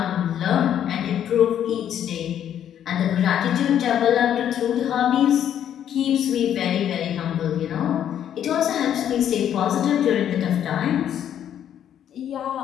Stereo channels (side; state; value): right; quieter; 10.0 dB